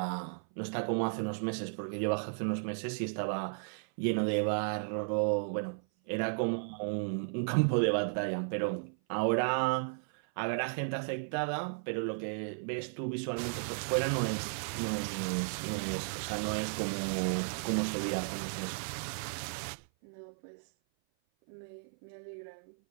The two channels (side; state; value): left; silent; 55 dB below the other